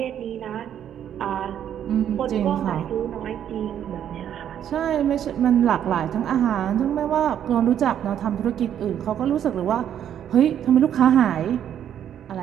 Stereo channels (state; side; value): quieter; left; 9.8 dB